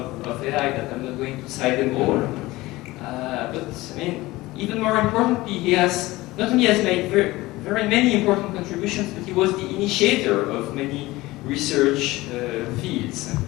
of AI that I'm not going to cite them all. But I mean, even more importantly, he has not only has made very many important contributions, but he was the initiator of many research fields.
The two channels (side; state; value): right; quieter; 19.3 dB